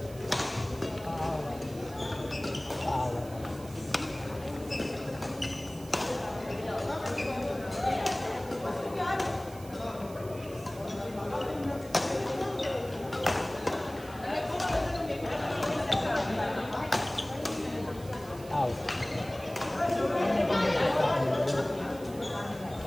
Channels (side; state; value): right; noise; hiss, 20 dB below the sound